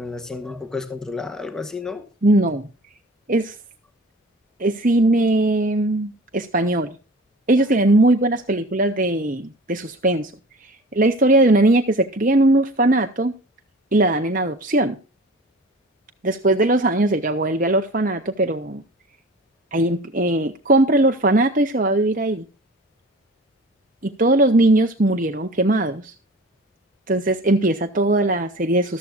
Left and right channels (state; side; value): normal; both; correlation 0.41